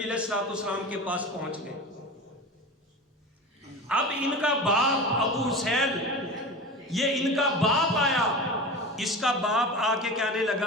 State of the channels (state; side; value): normal; both; correlation 0.30